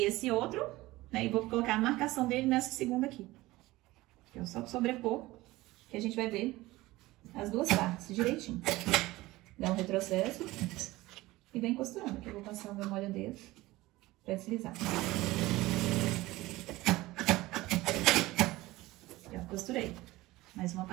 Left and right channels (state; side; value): quieter; left; 18.8 dB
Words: esse outro, né? E vou colocar a marcação dele nessa segunda aqui. Eu só sobrepor, que a gente vai ver as duas partes direitinho. Dá um retrocesso e vem costurando. Aqui eu vou passar o meu molha-dedos pra deslizar. Já costurei. Mais uma